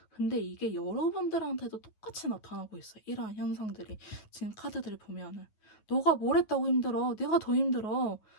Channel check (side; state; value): right; late; 9.4 ms